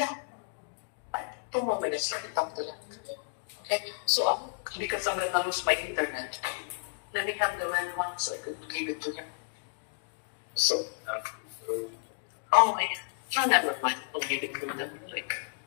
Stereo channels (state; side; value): silent; right; digital silence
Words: Tumabilis lang itang lang. Okay? So, because I'm gonna lose my internet, let me have the right one so I could give it to him. So, okay. Sana naman pag-hilig ko na like.